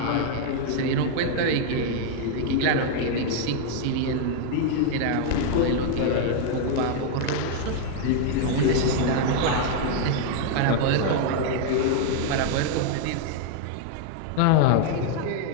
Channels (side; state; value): both; different; correlation 0.00